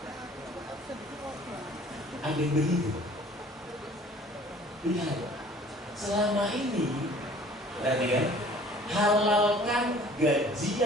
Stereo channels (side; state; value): both; normal; correlation 0.51